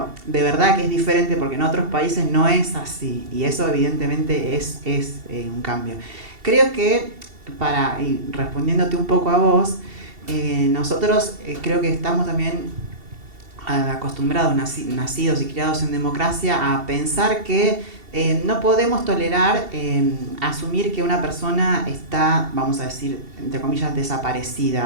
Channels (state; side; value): late; left; 2.7 ms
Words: de verdad que es diferente, porque en otros países no es así, y eso evidentemente es un cambio. Creo que, y respondiéndote un poco a vos, nosotros creo que estamos también acostumbrados, nacidos y criados en democracia, a pensar que no podemos tolerar asumir que una persona está, vamos a decir, entre comillas,